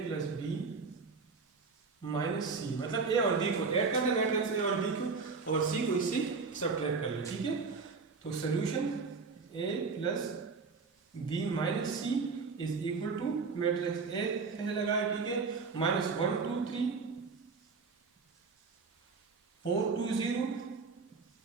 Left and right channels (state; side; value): quieter; left; 4.7 dB